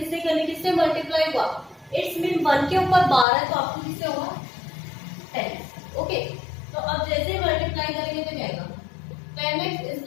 करनी, किससे मल्टीप्लाई हुआ इट्स मीन 1 के ऊपर बार है तो आपको किससे होगा 10, ओके। तो अब जैसे मल्टीप्लाई करेंगे तो क्या आएगा 10x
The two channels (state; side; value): drops out; right; at 3.2 s